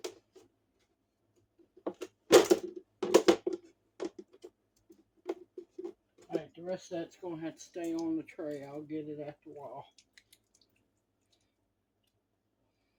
Alright, the rest of that's going to have to stay on the tray. I'll get it after a while.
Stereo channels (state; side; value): identical; both; correlation 1.00